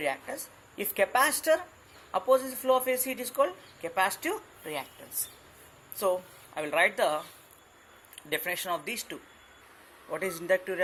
If capacitor opposes the flow of AC, it is called capacitive reactance. So, I will write the definition of these two. What is inductive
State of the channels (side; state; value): both; identical; correlation 1.00